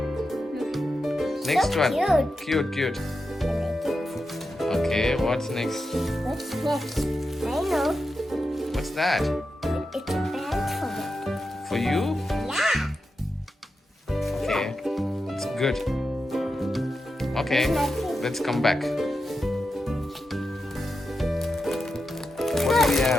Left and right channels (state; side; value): normal; both; correlation 0.89